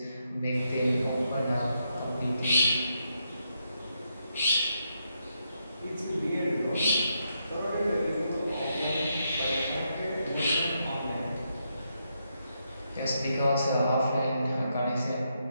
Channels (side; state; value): both; inverted; correlation -0.81